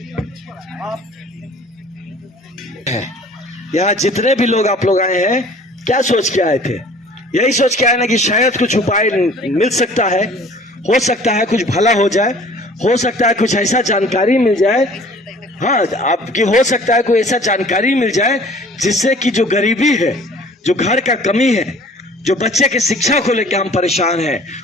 यहाँ जितने भी लोग आप लोग आए हैं, क्या सोच के आए थे? यही सोच के आए ना कि शायद कुछ उपाय मिल सकता है, हो सकता है कुछ भला हो जाए, हो सकता है कुछ ऐसा जानकारी मिल जाए, हाँ आपकी हो सकता है कोई ऐसा जानकारी मिल जाए जिससे कि जो गरीबी है, जो घर का कमी है, जो बच्चे के शिक्षा को लेकर हम परेशान हैं,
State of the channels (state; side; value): normal; both; correlation 0.50